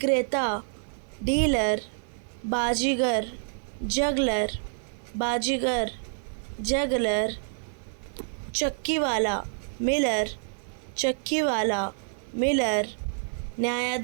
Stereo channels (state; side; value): silent; left; 55 dB below the other